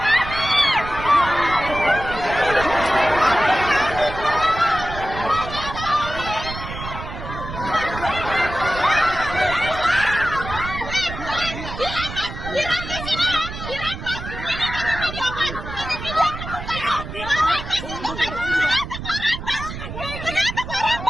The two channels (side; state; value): right; noise; rumble, 9 dB below the sound